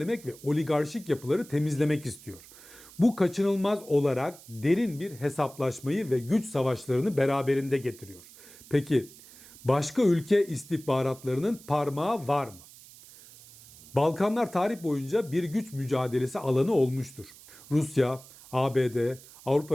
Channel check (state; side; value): noise; right; hiss, 20 dB below the sound